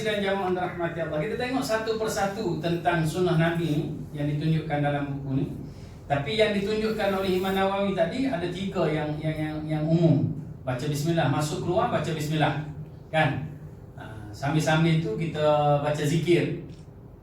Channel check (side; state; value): both; identical; correlation 1.00